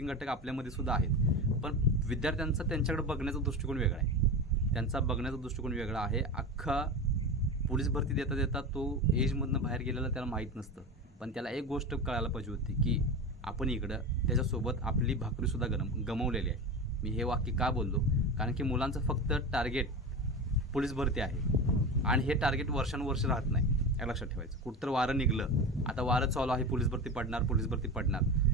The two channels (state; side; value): normal; both; correlation 0.25